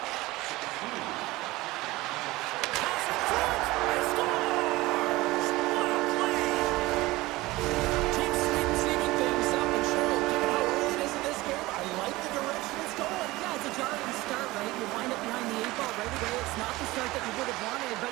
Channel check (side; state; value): left; quieter; 19.7 dB